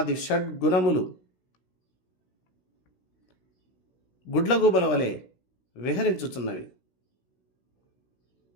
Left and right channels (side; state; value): right; late; 16 ms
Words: షడ్గుణములు గుడ్లగూబల వలె విహరించుచున్నవి.